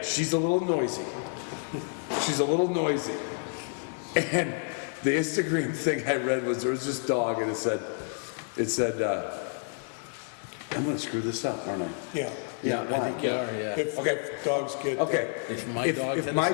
she's a little noisy. She's a little noisy. And the Instagram thing I read was there was this dog, and it said, I'm gonna screw this up, aren't I? Yeah. Yeah, I think you are, yeah. If dogs get. Okay. If my dog if had a my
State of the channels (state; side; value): silent; right; 56 dB below the other